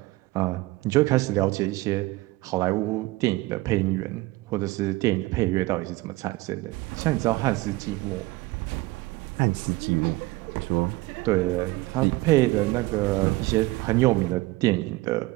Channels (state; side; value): quieter; left; 20.3 dB